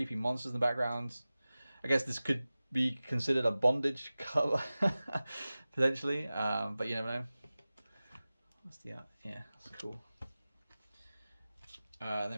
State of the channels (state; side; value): inverted; both; correlation -0.97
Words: monsters in the background. I guess this could be considered a bondage cover potentially, but you never know. What's the yeah, that's cool.